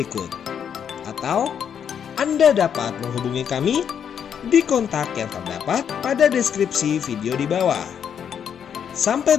Atau Anda dapat menghubungi kami di kontak yang terdapat pada deskripsi video di bawah.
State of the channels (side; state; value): right; quieter; 8.2 dB